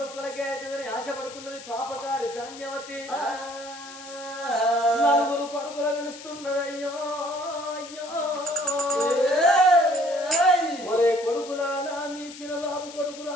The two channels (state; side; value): noise; left; hiss, 15 dB below the sound